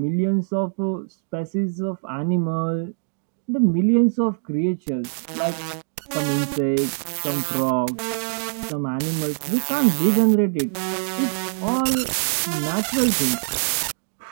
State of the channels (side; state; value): left; silent; digital silence